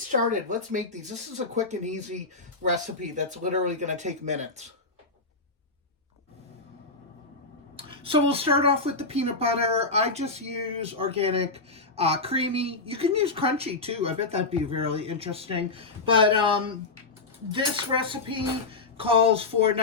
Let's make these. This is a quick and easy recipe that's literally going to take minutes. So we'll start off with the peanut butter. I just use organic, creamy. You can use crunchy too. I bet that'd be really interesting. But this recipe calls for,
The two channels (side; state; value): right; quieter; 3.6 dB